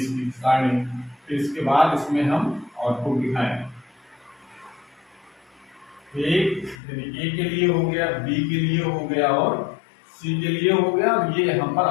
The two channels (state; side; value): drops out; right; at 6.8 s